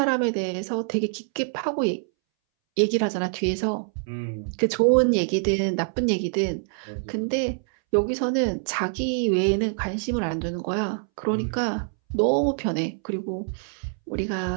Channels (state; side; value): silent; left; 62 dB below the other